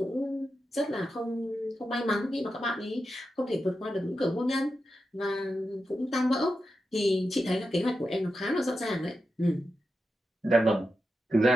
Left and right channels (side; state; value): both; normal; correlation 0.89